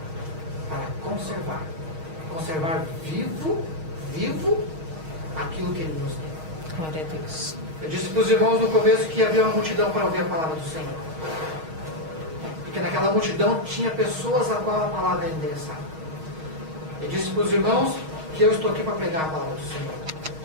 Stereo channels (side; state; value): left; late; 6.4 ms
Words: para conservar vivo aquilo que Ele nos deu. Glória a Deus. Eu disse para os irmãos no começo que havia uma multidão para ouvir a palavra do Senhor. Porque naquela multidão tinha pessoas a qual a palavra era endereçada. Eu disse para os irmãos que eu estou aqui para pregar a palavra do Senhor.